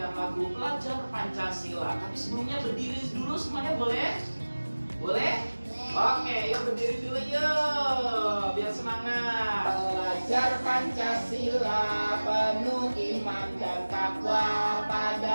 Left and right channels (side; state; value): both; inverted; correlation -1.00